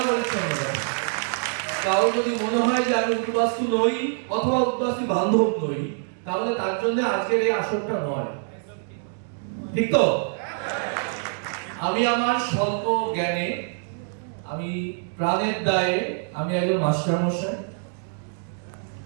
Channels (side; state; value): left; silent; 62 dB below the other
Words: পরিচ্ছন্নতা। কারো যদি মনে হয় যে আমি উদ্বাস্তু নই অথবা উদ্বাস্তু বান্ধব নই, তাহলে তার জন্য আজকের এই আসরটা নয়, ঠিক তো? আমি আমার স্বল্প জ্ঞানে, আমি প্রাণের দায়ে, আমি একজন মাস্টারমশাই,